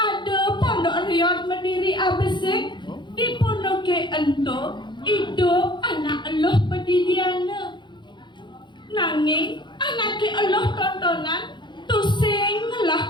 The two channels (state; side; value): late; right; 0.22 ms